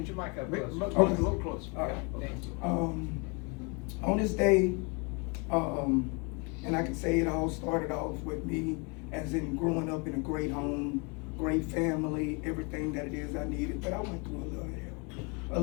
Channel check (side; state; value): right; quieter; 31.4 dB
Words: your mic up close. Okay. A little closer. All right. Thank you. On this day, and I can say it all started off with me as in growing up in a great home, great family, everything that it is I needed, but I went through a